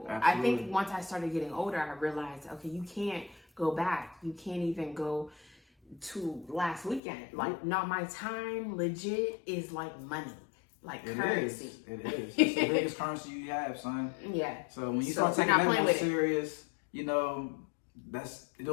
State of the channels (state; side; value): drops out; right; at 7.0 s